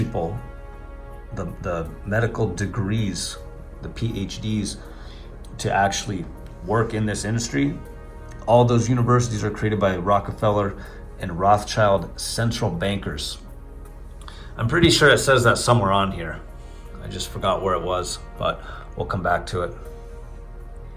the medical degrees, the PhDs, to actually work in this industry. All those universities are created by Rockefeller and Rothschild central bankers. I'm pretty sure it says that somewhere on here. I just forgot where it was, but we'll come back to it.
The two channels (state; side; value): identical; both; correlation 1.00